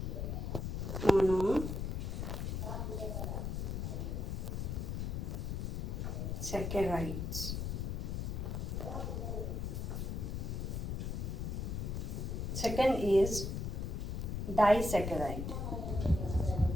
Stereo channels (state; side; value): noise; left; rumble, 2 dB below the sound